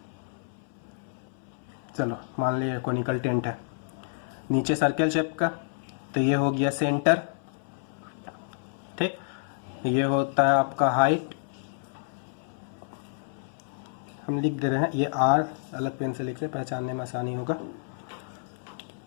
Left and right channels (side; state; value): right; silent; 59 dB below the other